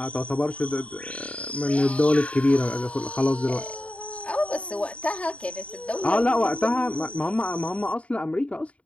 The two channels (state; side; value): late; right; 0.064 ms